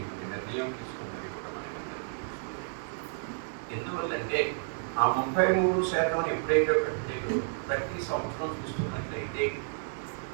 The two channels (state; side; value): silent; left; digital silence